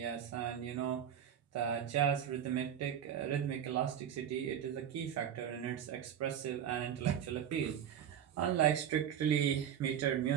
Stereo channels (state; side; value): quieter; left; 9.3 dB